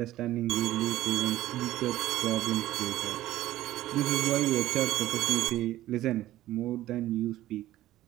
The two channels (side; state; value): left; quieter; 14.7 dB